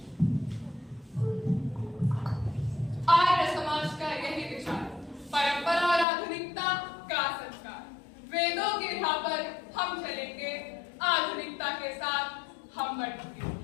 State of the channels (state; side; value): drops out; right; at 6.1 s